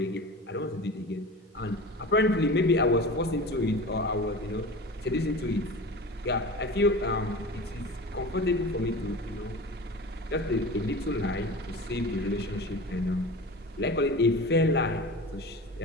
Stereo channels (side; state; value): both; normal; correlation 0.34